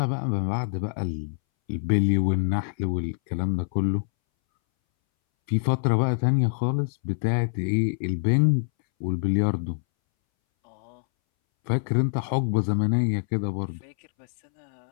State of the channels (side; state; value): right; silent; 61 dB below the other